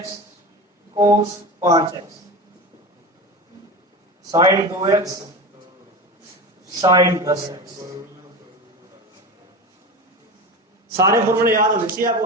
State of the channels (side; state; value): both; normal; correlation 0.27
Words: कोस 5x sign 2x sign 10x। सारे फॉर्मूले याद होने चाहिए आपको,